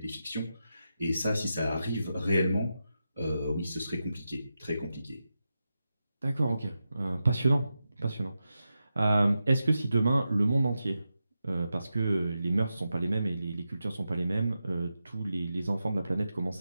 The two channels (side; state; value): both; inverted; correlation -0.89